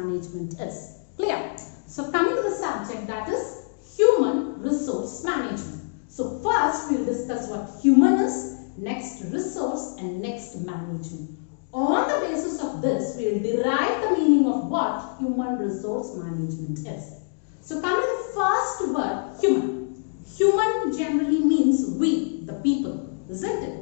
is. Clear? So coming to the subject, that is human resource management. So first we will discuss what human is, next resource, and next management. On the basis of this, we will derive the meaning of what human resource management is. So coming to the first word, human. Human generally means we, the people, isn't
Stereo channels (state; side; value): silent; right; digital silence